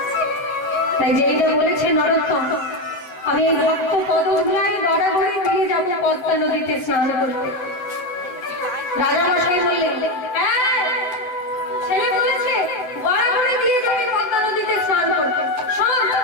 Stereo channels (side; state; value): right; late; 8.0 ms